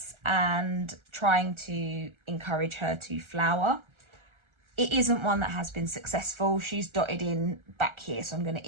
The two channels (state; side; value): late; left; 1.4 ms